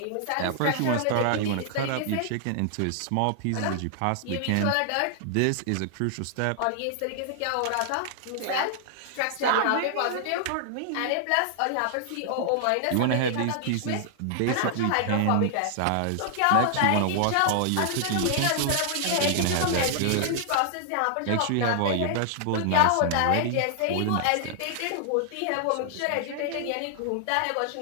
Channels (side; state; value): both; different; correlation -0.01